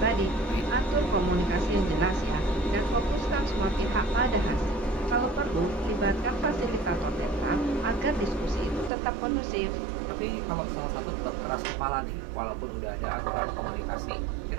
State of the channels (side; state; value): left; drops out; at 8.9 s